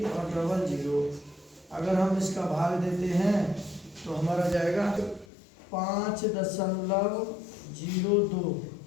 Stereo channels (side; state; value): right; drops out; at 5.2 s